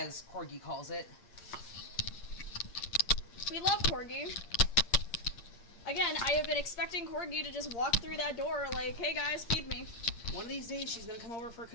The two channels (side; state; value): right; late; 8.6 ms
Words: Corgi calls it. We love Corgi. Again, I have been expecting Corgi to just walk through that door like, hey guys, feed me. One of these days, she's gonna come over for a